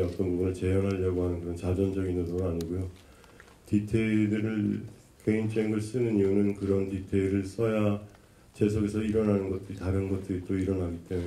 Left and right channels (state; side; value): identical; both; correlation 1.00